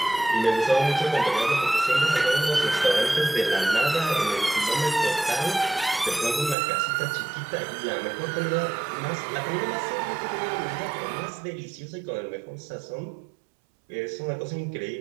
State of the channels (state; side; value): drops out; left; at 6.6 s